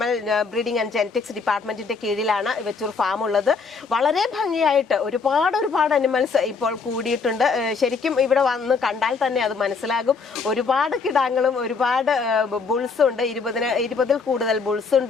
ബ്രീഡിംഗ് ആൻഡ് ജെനറ്റിക്സ് ഡിപ്പാർട്ട്മെന്റിന്റെ കീഴിലാണ് വെച്ചൂർ ഫാം ഉള്ളത്. വളരെ ഭംഗിയായിട്ട് ഒരുപാട് അനിമൽസ് ഇപ്പോൾ കൂടിയിട്ടുണ്ട്. ശരിക്കും ഇവിടെ വന്ന് കണ്ടാൽ തന്നെ അത് മനസ്സിലാകും. ഒരുപാട് കിടാങ്ങളും ഒരുപാട് ബുൾസും ഉണ്ട്. 20-ൽ കൂടുതൽ ബുൾസ്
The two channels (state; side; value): quieter; right; 4.9 dB